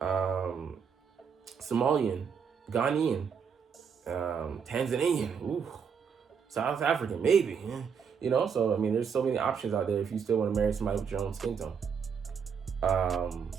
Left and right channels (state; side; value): quieter; left; 6.6 dB